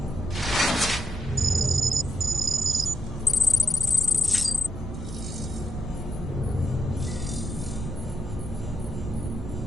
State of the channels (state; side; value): normal; both; correlation 0.82